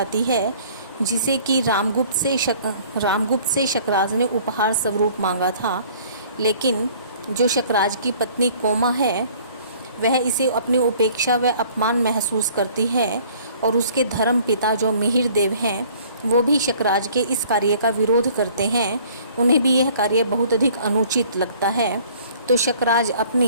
है, जिसे कि रामगुप्त से शकराज ने उपहार स्वरूप मांगा था। लेकिन जो शकराज की पत्नी कोमा है, वह इसे अपनी उपेक्षा व अपमान महसूस करती है और उसके धर्म पिता जो मिहिर देव हैं, वो भी शकराज के इस कार्य का विरोध करते हैं। उन्हें भी यह कार्य बहुत अधिक अनुचित लगता है। तो शकराज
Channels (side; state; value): both; inverted; correlation -0.54